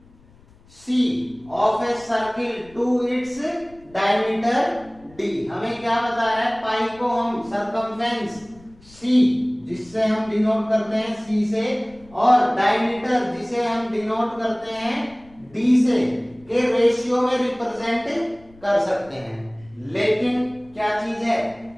C of a circle to its diameter D। हमें क्या बता रहा है? पाई को हम सरकमफेरेंस C जिससे हम डिनोट करते हैं C से, और डायमीटर जिसे हम डिनोट करते हैं D से के रेशियो में रिप्रेजेंट कर सकते हैं। लेकिन क्या चीज है?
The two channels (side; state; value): left; noise; rumble, 26 dB below the sound